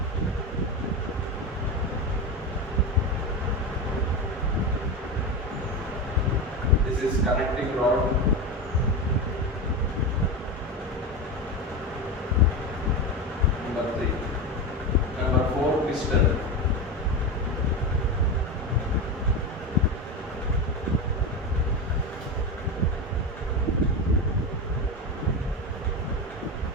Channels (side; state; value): both; normal; correlation 0.19